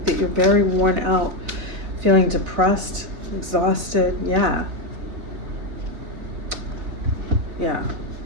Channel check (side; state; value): left; late; 4.0 ms